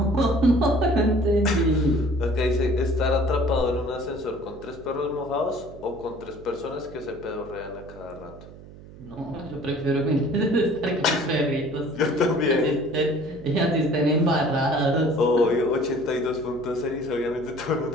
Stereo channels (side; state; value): right; noise; hum, 18 dB below the sound